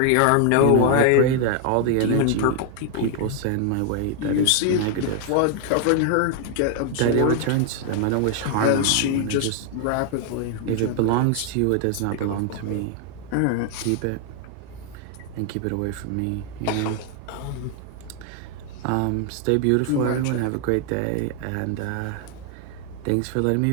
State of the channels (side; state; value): both; different; correlation 0.00